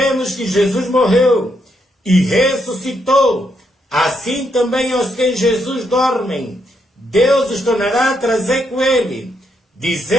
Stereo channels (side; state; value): both; normal; correlation 0.78